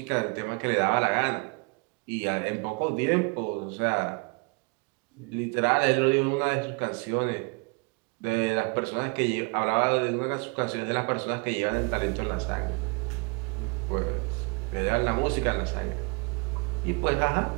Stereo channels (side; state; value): left; quieter; 30.9 dB